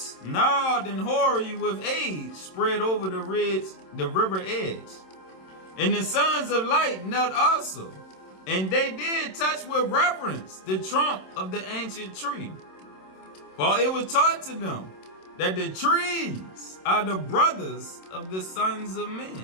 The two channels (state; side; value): late; right; 27 ms